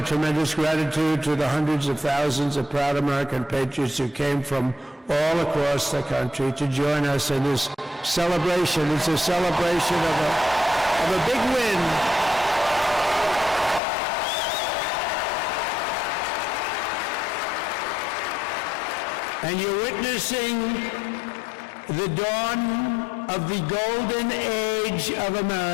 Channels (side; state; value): right; drops out; at 13.8 s